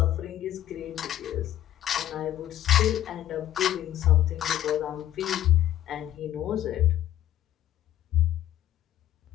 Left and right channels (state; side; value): quieter; right; 12.4 dB